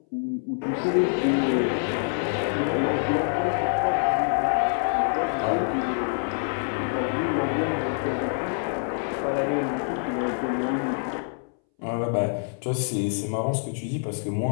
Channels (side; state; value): right; silent; 61 dB below the other